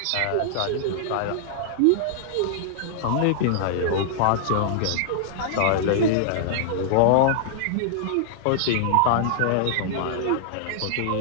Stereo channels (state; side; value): different; both; correlation -0.01